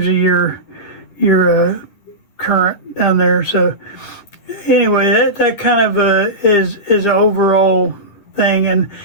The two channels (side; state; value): right; late; 9.8 ms